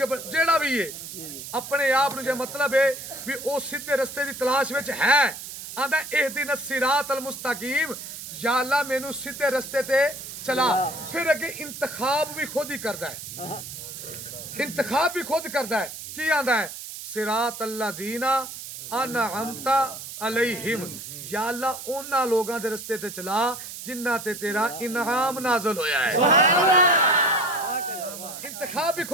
जेड़ा भी है अपने आप नु जे मतलब है भी ओ सीधे रस्ते दी तलाश विच है। आंदा इहदिन सिरात अल मुस्तकीम, या अल्लाह मैनू सीधे रस्ते ते चला। फिर अगे इंतखाब भी खुद ही करदा है, इंतखाब भी खुद करदा है। की आंदा है? सिरात अल्लाजीना अनअमता अलैहिम, या अल्लाह उन्हां लोगां दे रस्ते ते चला जिन्हां ते तेरा इनाम नाज़िल होया है। इंतखाब भी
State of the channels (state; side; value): noise; right; hiss, 10 dB below the sound